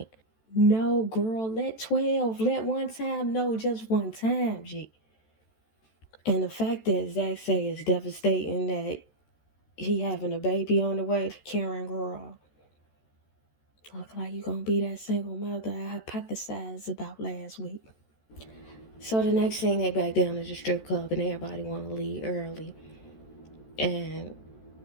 No, girl, let 12. Let one time. No, just one time, G. And the fact that Zach say is devastating that he having a baby on the way. Karen, girl, look like you gonna be that single mother I hypothesized about last week. So the next thing, they back down to the strip club and everybody want to leave early. And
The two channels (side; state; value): right; late; 14 ms